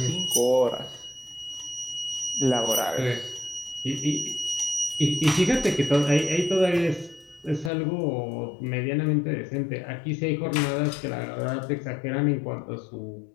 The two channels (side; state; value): right; drops out; at 7.7 s